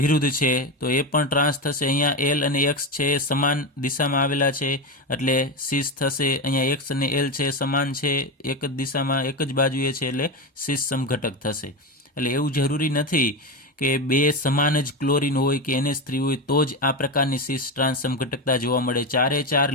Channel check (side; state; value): both; normal; correlation 0.16